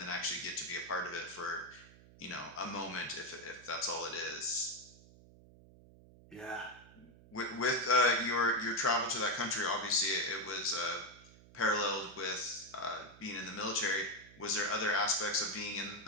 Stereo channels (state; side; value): noise; right; hum, 22 dB below the sound